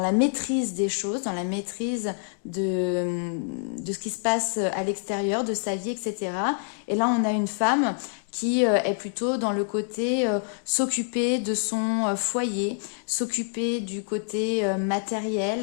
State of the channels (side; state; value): right; silent; 61 dB below the other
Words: la maîtrise des choses, dans la maîtrise de ce qui se passe à l'extérieur, de sa vie, etc. Et là, on a une femme qui est plutôt dans le côté s'occuper de son foyer, s'occuper du côté